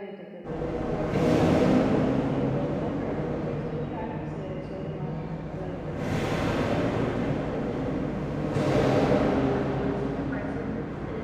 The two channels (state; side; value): identical; both; correlation 1.00